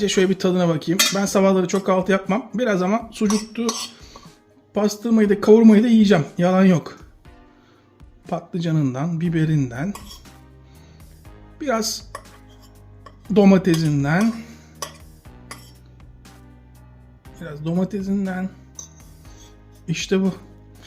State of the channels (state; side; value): identical; both; correlation 1.00